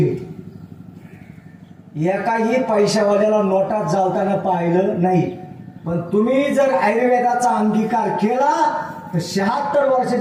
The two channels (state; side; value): identical; both; correlation 1.00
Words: एकाही पैशावाल्याला नोटात चालताना पाहिलं नाही. पण तुम्ही जर आयुर्वेदाचा अंगीकार केला तर 76